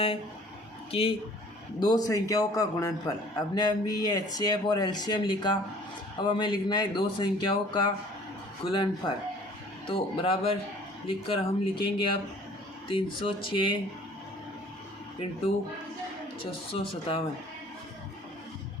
कि दो संख्याओं का गुणनफल। अपने अभी ये HCF और LCM लिखा, अब हमें लिखना है दो संख्याओं का गुणनफल। तो बराबर लिखकर हम लिखेंगे अब 306 इंटू 657।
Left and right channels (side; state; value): both; normal; correlation 0.52